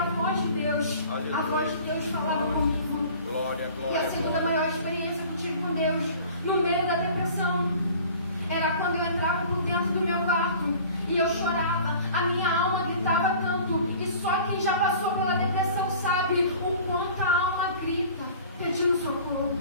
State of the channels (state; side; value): inverted; both; correlation -0.45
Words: a voz de Deus. Aleluia. A voz de Deus falava comigo. Glória, E glória. a segunda maior experiência que eu tive com Deus, no meio da depressão, era quando eu entrava por dentro do meu quarto e eu chorava. A minha alma gritava tanto. E só quem já passou pela depressão sabe o quanto a alma grita, pedindo socorro.